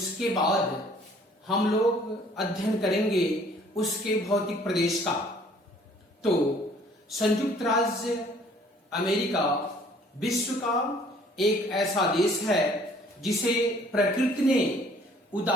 बाद हम लोग अध्ययन करेंगे उसके भौतिक प्रदेश का। तो संयुक्त राज्य अमेरिका विश्व का एक ऐसा देश है जिसे प्रकृति ने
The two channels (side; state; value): both; normal; correlation 0.57